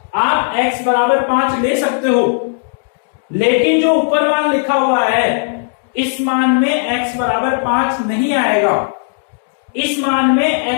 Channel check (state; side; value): silent; right; 67 dB below the other